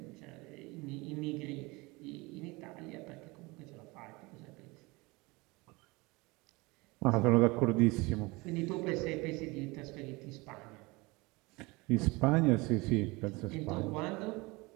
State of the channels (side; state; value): left; quieter; 24.3 dB